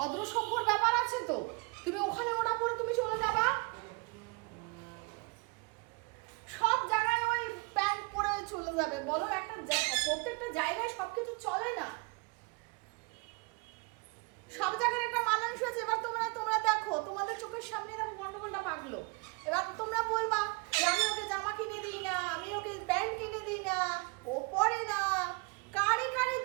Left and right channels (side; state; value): left; quieter; 28.7 dB